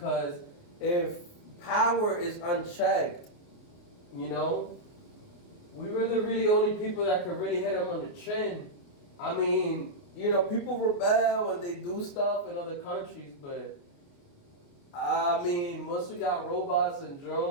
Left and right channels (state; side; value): late; right; 29 ms